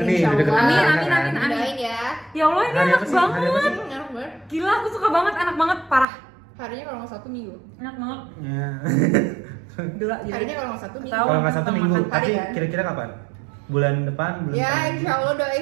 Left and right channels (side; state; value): left; drops out; at 6.1 s